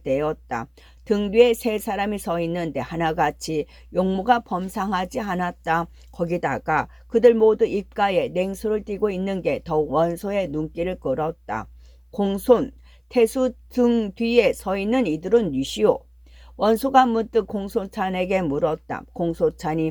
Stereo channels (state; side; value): identical; both; correlation 1.00